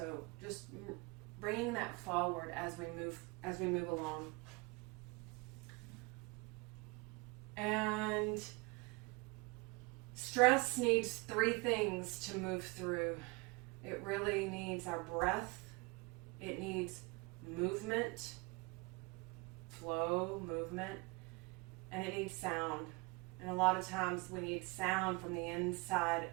just bringing that forward as we move along. And stress needs 3 things to move through. It really needs our breath. It needs movement, flow, movement, and it needs sound. And a lot of times we need sound from the inside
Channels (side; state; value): left; quieter; 26.6 dB